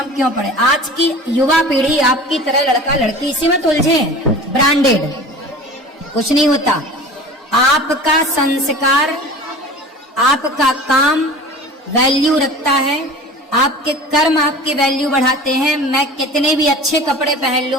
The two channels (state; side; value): normal; both; correlation 0.39